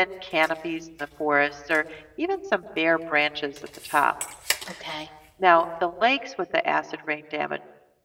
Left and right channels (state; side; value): identical; both; correlation 1.00